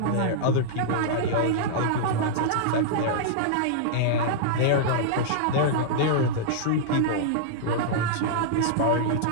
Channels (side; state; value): both; different; correlation -0.02